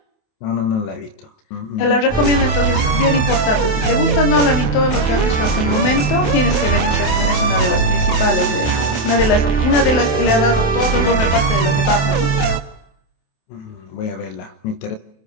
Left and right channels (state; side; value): late; right; 28 ms